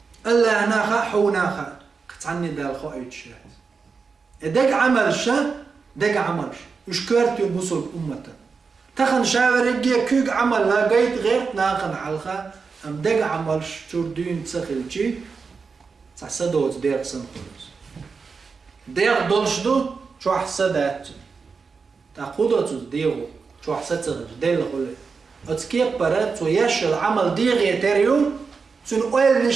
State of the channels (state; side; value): quieter; left; 5.0 dB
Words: الله ناخا حوناخا قطعني دال خايت شات دق عمل شا دق عملش وش كرت يبوصل أمته تخن شاور يجي كوك عمل لا قيت غير ناخن حلخا أم دق عملش تردين تسخلشي تحسدوت دير سنقلوس دير دولشدو شو حسدات تاخدوت ديرو شو حسدت دير خلي أتكيب برات ويش العمل دير يتريو سن أول